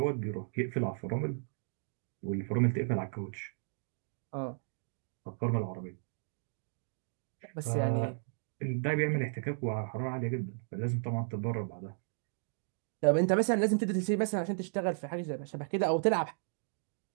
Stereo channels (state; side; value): silent; left; digital silence